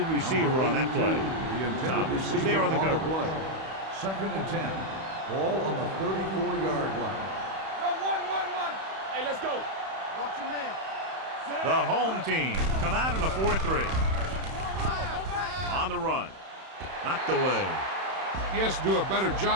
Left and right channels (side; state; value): left; late; 31 ms